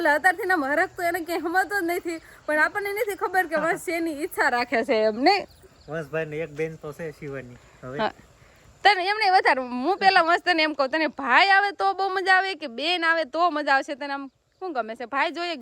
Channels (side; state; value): both; identical; correlation 1.00